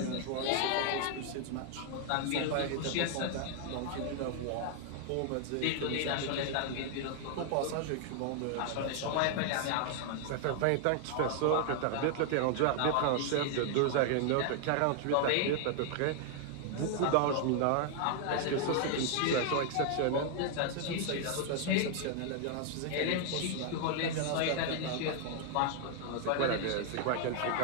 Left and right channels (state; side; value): different; both; correlation 0.00